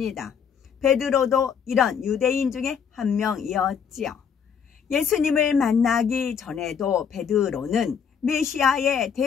베드로도 이런 유대인 중에 한 명이었지요. 예수님을 만나기 전에도 베드로는 메시아에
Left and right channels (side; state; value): right; quieter; 7.1 dB